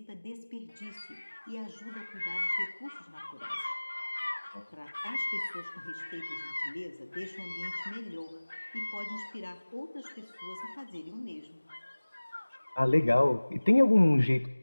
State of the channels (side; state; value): both; inverted; correlation -1.00